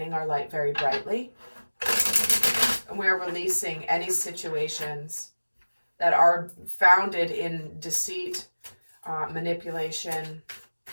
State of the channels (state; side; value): inverted; both; correlation -1.00